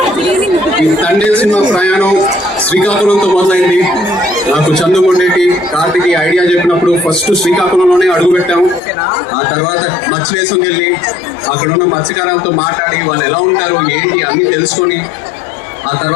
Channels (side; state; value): right; drops out; at 8.8 s